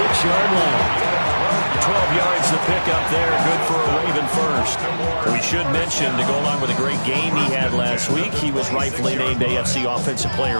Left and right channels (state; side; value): inverted; both; correlation -1.00